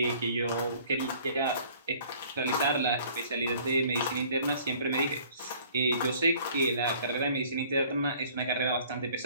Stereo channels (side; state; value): both; inverted; correlation -0.54